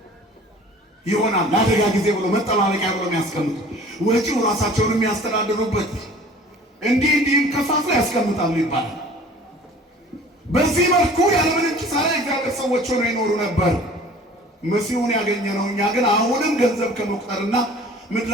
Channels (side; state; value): both; normal; correlation 0.47